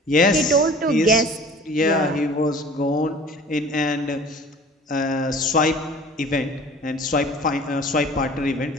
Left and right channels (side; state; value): both; normal; correlation 0.45